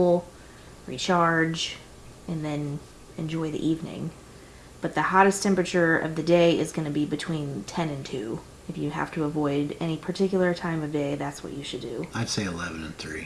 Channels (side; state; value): both; identical; correlation 1.00